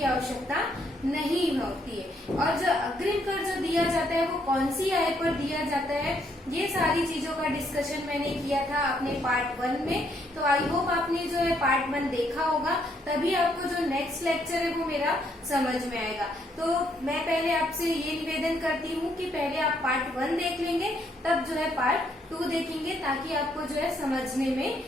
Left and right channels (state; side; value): normal; both; correlation 0.71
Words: आवश्यकता नहीं होती है, और जो अग्रिम कर जो दिया जाता है वो कौन सी आय पर दिया जाता है। ये सारी चीजों का डिस्कशन मैंने किया था अपने पार्ट 1 में। तो आई होप आपने जो है पार्ट 1 देखा होगा, तभी आपको जो नेक्स्ट लेक्चर है वो मेरा समझ में आएगा। तो मैं पहले आपसे ये निवेदन करती हूँ कि पहले आप पार्ट 1 देख लेंगे, तब जो है पार्ट 2 देखेंगे, ताकि आपको जो है समझने में